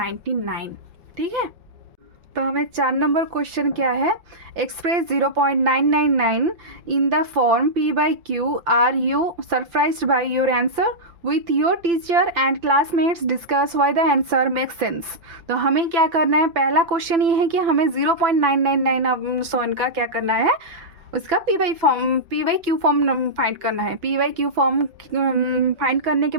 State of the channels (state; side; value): late; left; 5.9 ms